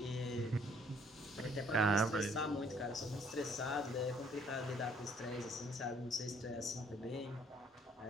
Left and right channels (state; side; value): normal; both; correlation 0.62